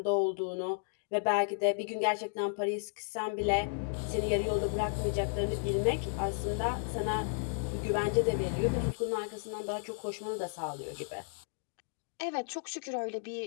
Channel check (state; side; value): silent; right; digital silence